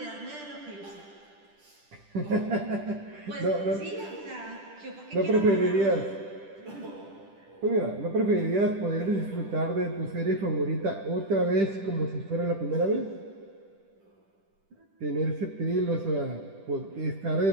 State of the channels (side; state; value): left; late; 10 ms